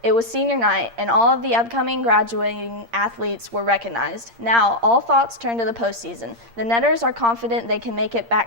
It was senior night, and all of the upcoming graduating athletes were recognized. Now, all thoughts turn to the postseason. The Netters are confident they can make it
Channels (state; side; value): late; left; 8.6 ms